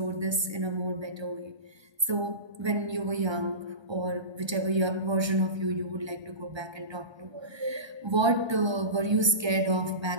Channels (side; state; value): left; late; 1.3 ms